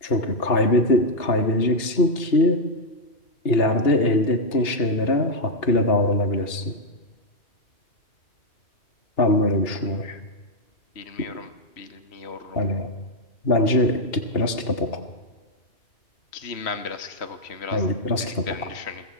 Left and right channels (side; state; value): right; late; 2.8 ms